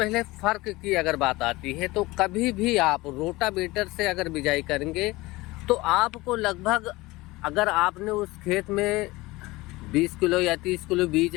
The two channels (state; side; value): quieter; right; 20.8 dB